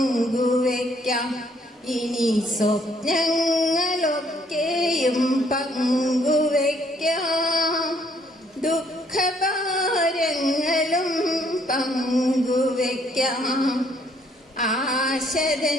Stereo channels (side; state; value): both; normal; correlation 0.66